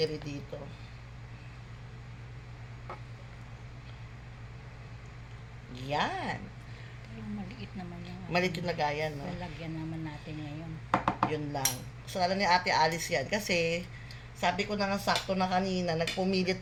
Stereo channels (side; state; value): both; identical; correlation 1.00